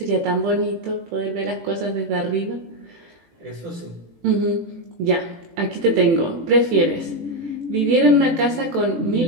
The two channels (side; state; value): left; late; 18 ms